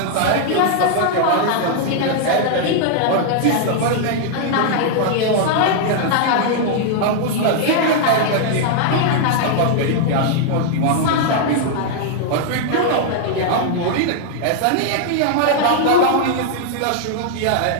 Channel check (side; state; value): both; different; correlation -0.01